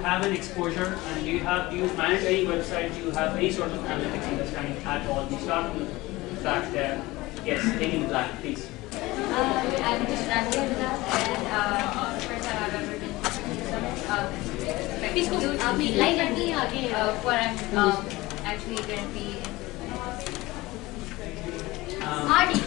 an exposure and do you manage any website, do you have any sort of analytics understanding at all? We start from the back there. Yes, taking the black, please. I'm just Ranjit and first time I've ever been what I'm actually currently in. Artie.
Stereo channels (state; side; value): quieter; right; 20.0 dB